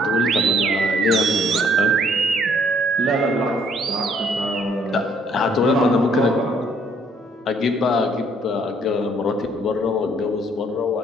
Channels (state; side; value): normal; both; correlation 0.64